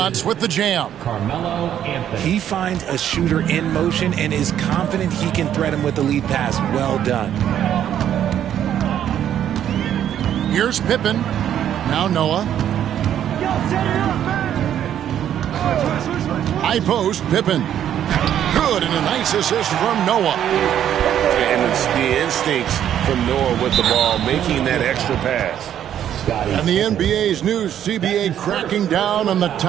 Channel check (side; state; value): left; quieter; 10.3 dB